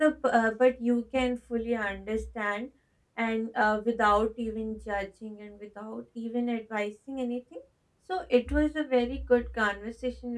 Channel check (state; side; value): identical; both; correlation 1.00